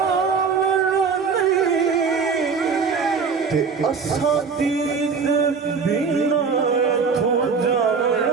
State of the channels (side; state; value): left; quieter; 5.4 dB